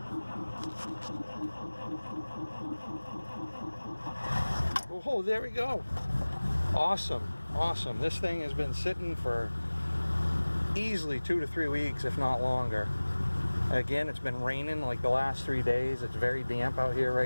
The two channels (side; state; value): both; inverted; correlation -1.00